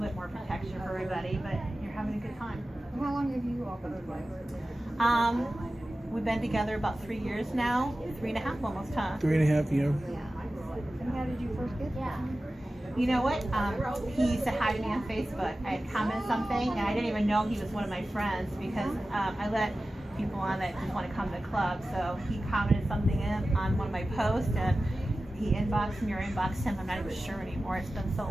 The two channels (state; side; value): normal; both; correlation 0.95